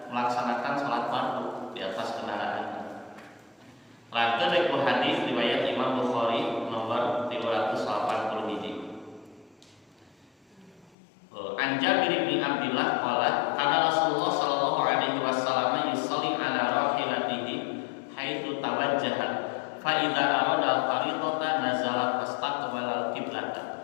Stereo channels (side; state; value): right; drops out; at 11.0 s